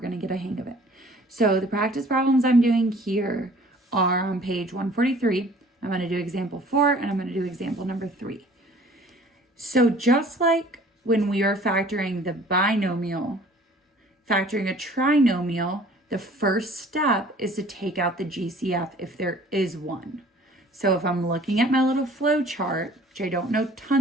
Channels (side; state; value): both; normal; correlation 0.52